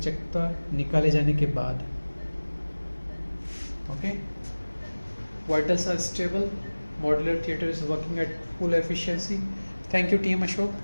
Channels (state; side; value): inverted; both; correlation -1.00